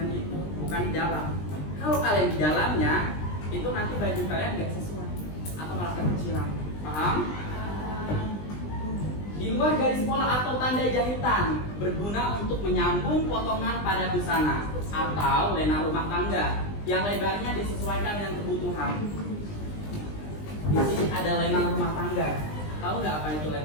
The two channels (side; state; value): right; late; 20 ms